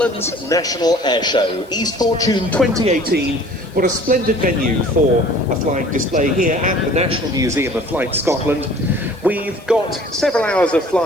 National Airshow, East Fortune 2018. What a splendid venue for a flying display here at the National Museum of Flight Scotland. We've got several hours of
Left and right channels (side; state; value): left; noise; hiss, 28 dB below the sound